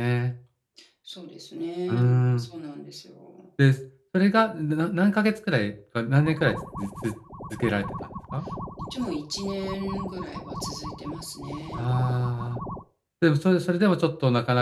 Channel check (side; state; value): both; identical; correlation 1.00